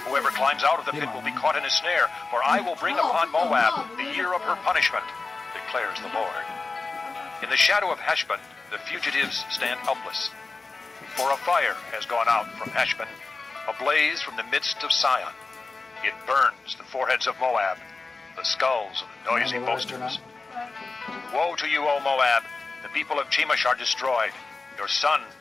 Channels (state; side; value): quieter; right; 3.8 dB